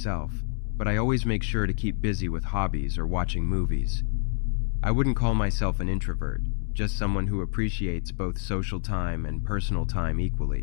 but I always make sure to keep busy with hobbies or watching movies. I wouldn't call myself an introvert, just someone who appreciates both social time and personal time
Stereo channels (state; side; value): silent; right; 60 dB below the other